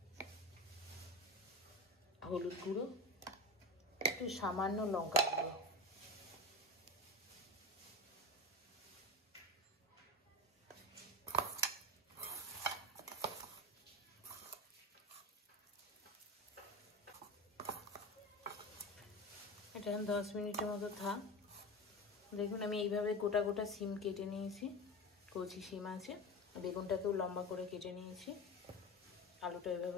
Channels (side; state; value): both; normal; correlation 0.24